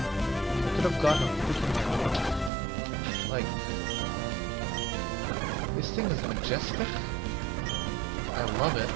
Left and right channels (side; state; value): left; drops out; at 2.5 s